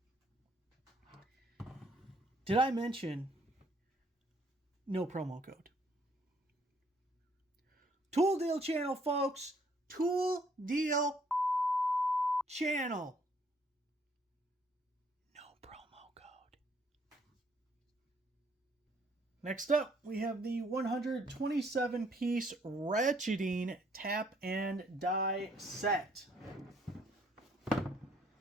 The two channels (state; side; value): normal; both; correlation 0.65